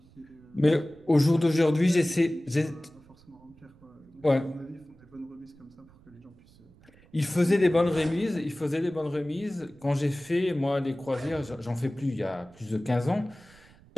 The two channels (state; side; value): noise; right; rumble, 27 dB below the sound